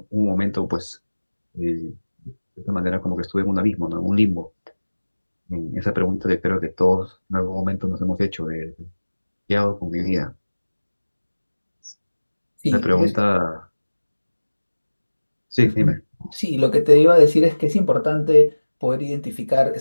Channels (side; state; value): both; inverted; correlation -1.00